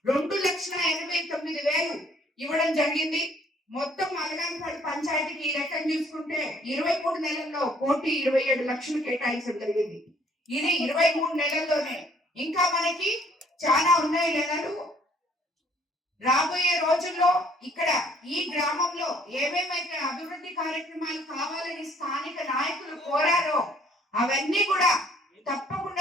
2,89,000 ఇవ్వడం జరిగింది. మొత్తం అలగానిపాడు పంచాయతీకి ఈ లెక్కను చూసుకుంటే 23 నెలల్లో 1,27,00,000 కేటాయించడం జరిగింది. ఇది 23 నెలల్లోనే. ఇంకా మనకి చాలా ఉన్నాయి నెలలు. రాబోయే రోజుల్లో ఇక్కడ ఈ గ్రామంలో ఏమేమైతే అభివృద్ధి కార్యక్రమాలు కావాలని స్థానిక నాయకులు కోరారో అవన్నీ కూడా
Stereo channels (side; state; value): both; normal; correlation 0.61